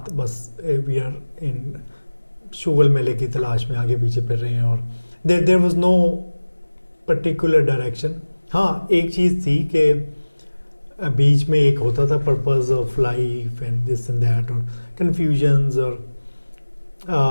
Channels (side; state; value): both; inverted; correlation -1.00